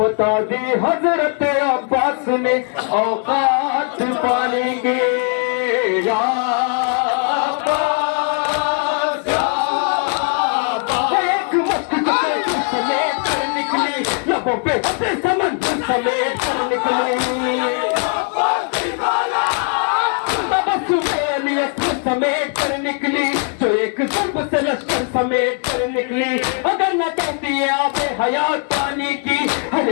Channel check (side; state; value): right; quieter; 39.1 dB